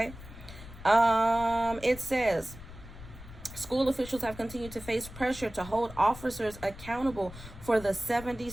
It says, school officials have continued to face pressure to hold officers accountable for the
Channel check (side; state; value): left; noise; rumble, 15 dB below the sound